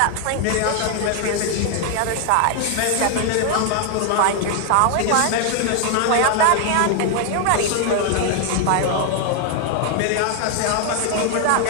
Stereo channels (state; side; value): different; both; correlation 0.00